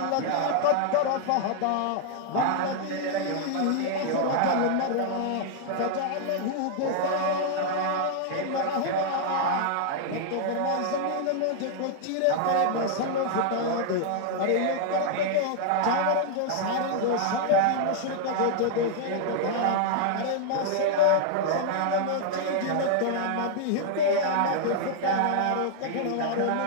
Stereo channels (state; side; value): different; both; correlation 0.00